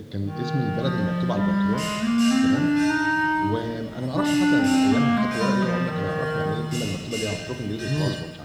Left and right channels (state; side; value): identical; both; correlation 1.00